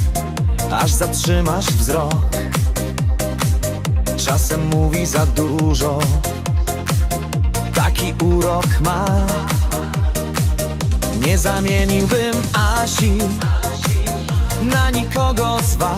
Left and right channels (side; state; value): both; identical; correlation 1.00